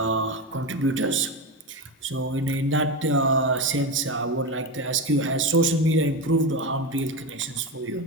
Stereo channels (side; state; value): both; normal; correlation 0.17